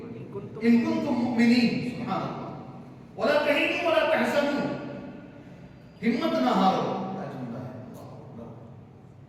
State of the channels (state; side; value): identical; both; correlation 1.00